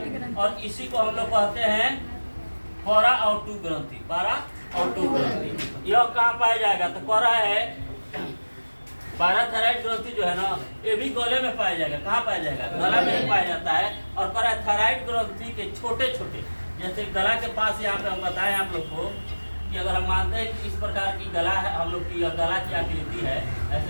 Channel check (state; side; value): inverted; both; correlation -1.00